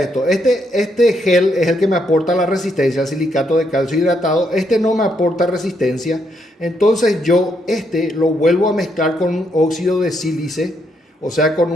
Este gel es el que me aporta la resistencia, el silicato de calcio hidratado. Este no me aporta resistencia. Entonces yo lo vuelvo a mezclar con un óxido de sílice, o sea, con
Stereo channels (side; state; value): both; normal; correlation 0.76